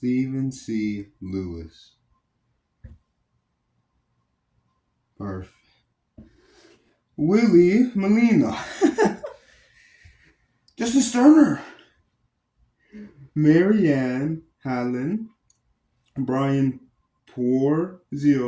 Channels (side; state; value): both; identical; correlation 1.00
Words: C. Lewis. Perfect. Willie Molina, Justin Sterner, Marianne Hallen, Brian